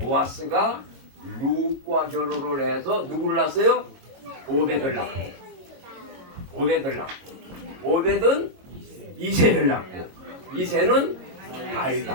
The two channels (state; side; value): late; left; 22 ms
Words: 룻과 결혼을 해서 누구를 낳았어요? 오벳을 낳고 오벳은 이새를 낳고 이새는